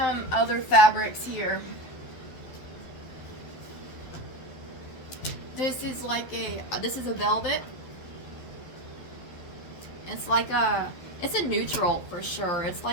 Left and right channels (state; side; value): late; right; 12 ms